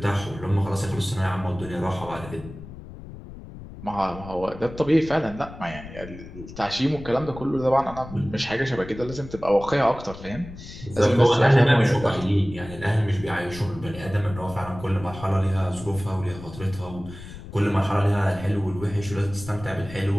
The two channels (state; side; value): noise; left; rumble, 14 dB below the sound